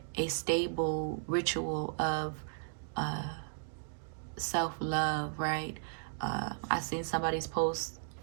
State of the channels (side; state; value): left; silent; digital silence